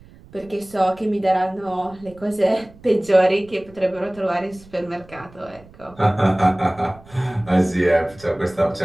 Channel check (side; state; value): right; noise; rumble, 24 dB below the sound